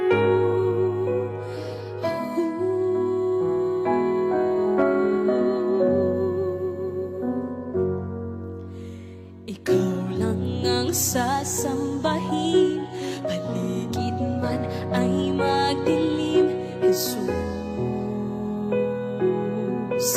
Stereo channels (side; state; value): both; identical; correlation 1.00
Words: Ikaw lang ang sasambahin, paligid man ay magdilim, Jesus.